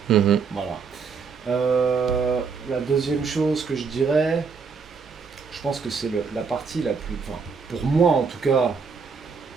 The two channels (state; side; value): quieter; left; 5.5 dB